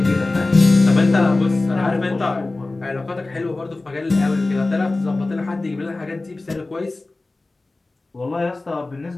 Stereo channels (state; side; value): quieter; right; 3.1 dB